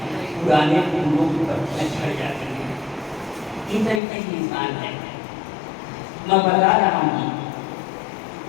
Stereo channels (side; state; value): right; drops out; at 4.0 s